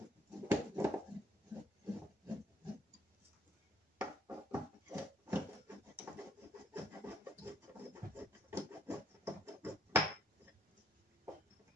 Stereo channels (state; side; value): normal; both; correlation 0.65